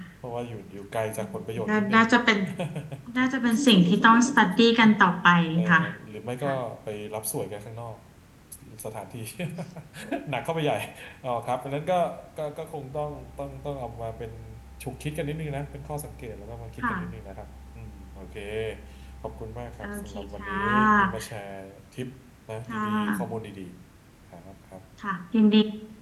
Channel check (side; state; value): both; identical; correlation 1.00